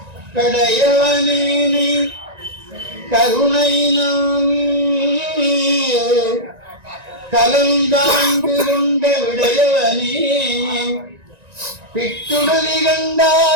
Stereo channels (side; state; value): left; late; 1.9 ms